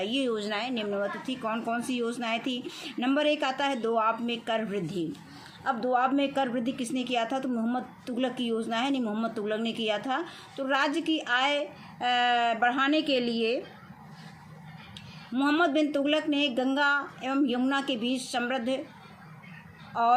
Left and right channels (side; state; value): both; identical; correlation 1.00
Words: योजनाएं निम्नवत थी। कौन कौन सी योजनाएं थी? नंबर 1 आता है दोआब में कर वृद्धि। अब दोआब में कर वृद्धि किसने किया था? तो मोहम्मद तुगलक की योजना है। नहीं, मोहम्मद तुगलक ने किया था। तो राज्य की आय बढ़ाने के लिए मोहम्मद बिन तुगलक ने गंगा एवं यमुना के बीच समृद्ध